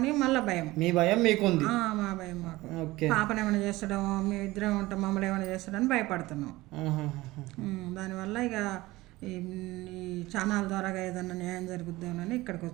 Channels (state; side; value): quieter; left; 19.1 dB